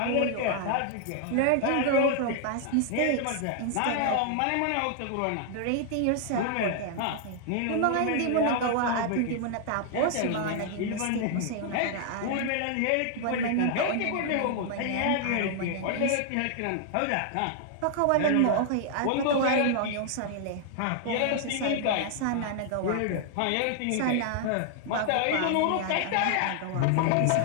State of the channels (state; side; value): different; both; correlation 0.00